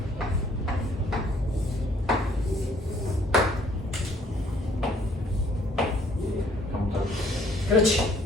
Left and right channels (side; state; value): both; normal; correlation 0.62